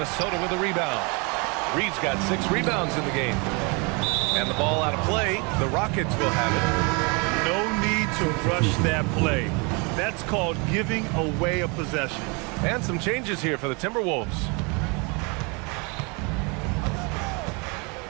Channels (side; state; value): left; quieter; 30.8 dB